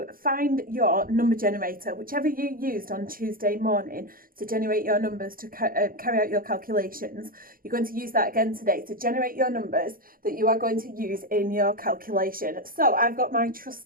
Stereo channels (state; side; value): late; left; 0.41 ms